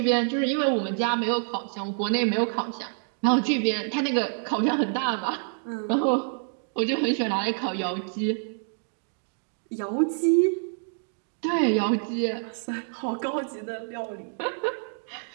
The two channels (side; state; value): left; silent; digital silence